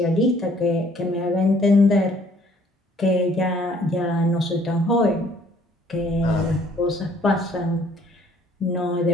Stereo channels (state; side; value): normal; both; correlation 0.60